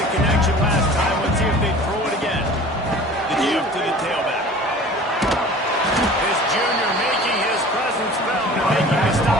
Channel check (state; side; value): normal; both; correlation 0.43